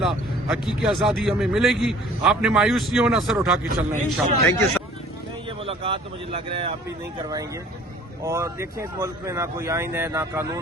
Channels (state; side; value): normal; both; correlation 0.52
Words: हकीकी आज़ादी हमें मिलेगी। आपने मायूस नहीं होना, सर उठा के चलना है इंशाअल्लाह। Thank you sir. नहीं, ये मुलाकात तो मुझे लग रहा है आप भी नहीं करवाएंगे। और देखिए इस मुल्क में ना कोई आइन है ना